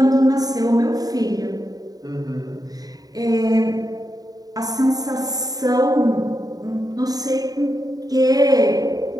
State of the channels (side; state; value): left; late; 0.18 ms